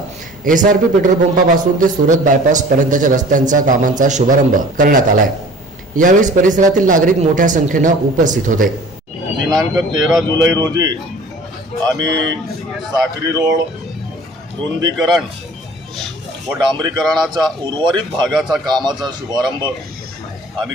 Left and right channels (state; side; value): normal; both; correlation 0.46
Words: एसआरपी पेट्रोल पंपापासून ते सुरत बायपास पर्यंतच्या रस्त्यांच्या कामांचा शुभारंभ करण्यात आलाय। यावेळी परिसरातील नागरिक मोठ्या संख्येने उपस्थित होते। दिनांक 13 जुलै रोजी आम्ही साखरी रोड रुंदीकरण व डांबरीकरणाचा उर्वरित भागाचा कामाचा शुभारंभ